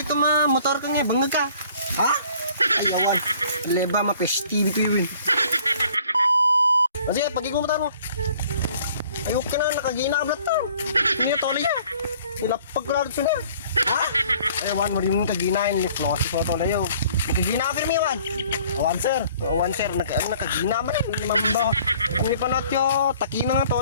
ito motor ka nga, bangag ka. Ha? Ay, awan. Leba, mapestibi ko yun. Sige, pagiging motor mo. Ayok ka na, nakagina ka blat to. Hindi na tolay yan. Nilapag ko lang ito na. Ha? Ay, awan, marimong kaginain. Niplosis mo tolay yun. Nakagina ka firme, awan. Awan, sir. Awan, sir. Nakagina man eh. Hindi mambaho. Ang ipanat yo, takina nga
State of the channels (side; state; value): both; inverted; correlation -0.55